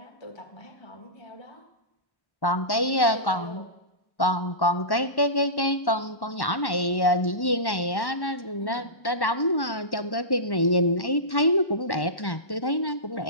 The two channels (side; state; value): right; late; 1.1 ms